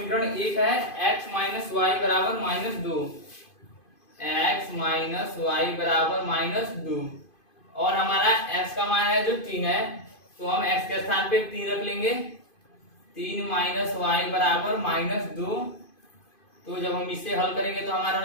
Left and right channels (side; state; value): right; late; 2.5 ms